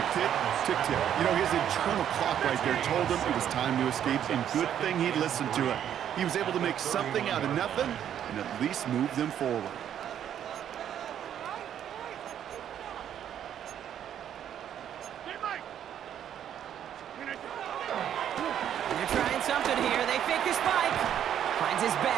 tick, tick, tick. You know, his internal clock right there told him it was time to escape, and good thing he listened to it. He was able to make something out of nothing and at least move them forward. They're trying something here. They fake the spike. Finds his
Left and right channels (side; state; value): left; quieter; 9.9 dB